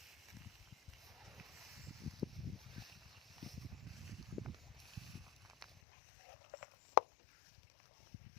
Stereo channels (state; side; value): drops out; right; at 5.7 s